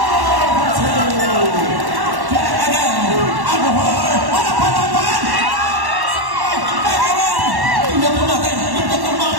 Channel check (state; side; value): late; left; 1.1 ms